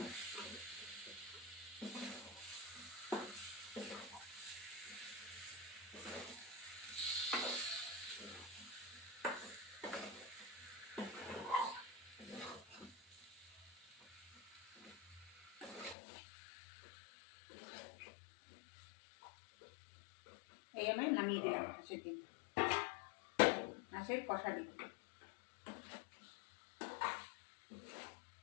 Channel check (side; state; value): right; drops out; at 16.0 s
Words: এই আমি নামিয়ে দিলাম হাঁসের ডিম, হাঁসের কষা ডিম।